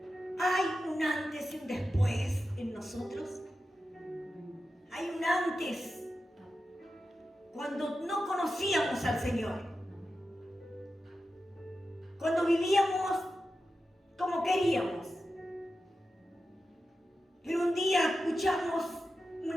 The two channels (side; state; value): both; normal; correlation 0.91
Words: ¿Hay un antes y un después en nosotros? ¿Hay un antes cuando no conocíamos al Señor? Cuando vivíamos como queríamos. Pero un día escuchamos